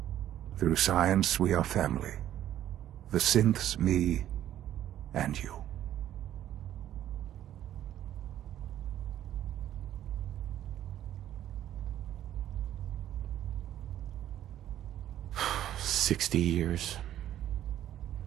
Through science, we are family. The synths, me, and you. "60 years.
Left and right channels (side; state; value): left; quieter; 11.8 dB